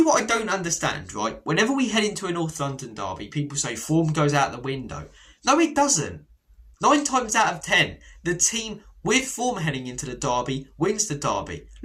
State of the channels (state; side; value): identical; both; correlation 1.00